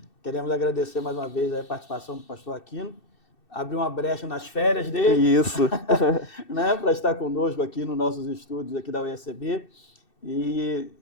Queremos agradecer mais uma vez a participação do pastor Aquino, abrir uma brecha nas férias dele. Isso. Né, para estar conosco aqui nos nossos estúdios aqui da UECB e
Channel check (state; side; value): late; right; 2.6 ms